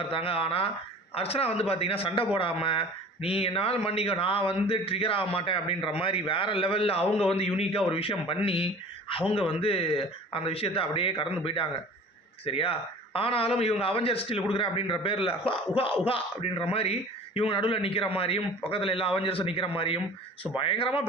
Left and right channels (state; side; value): normal; both; correlation 0.43